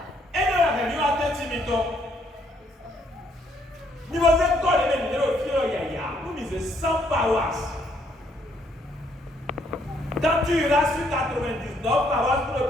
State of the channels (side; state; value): both; normal; correlation 0.70